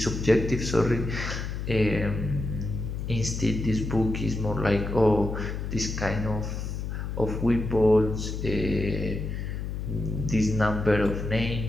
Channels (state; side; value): noise; left; hum, 4 dB below the sound